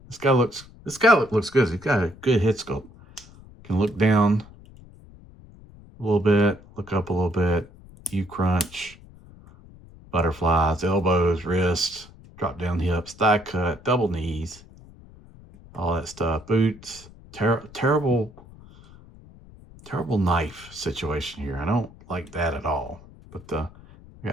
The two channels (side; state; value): left; noise; rumble, 21 dB below the sound